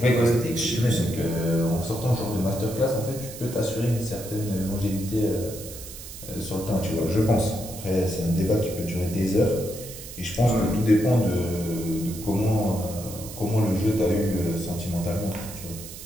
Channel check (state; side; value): noise; right; hiss, 13 dB below the sound